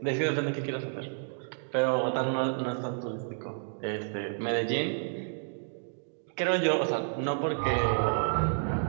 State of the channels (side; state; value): left; silent; digital silence